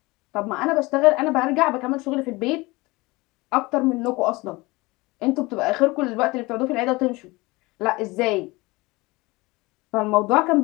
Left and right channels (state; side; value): quieter; right; 22.7 dB